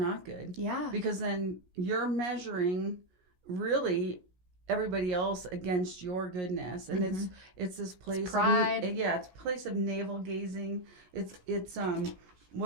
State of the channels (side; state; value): left; late; 17 ms